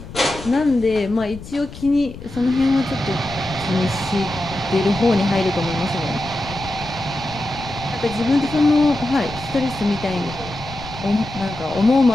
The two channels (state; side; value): noise; left; rumble, 14 dB below the sound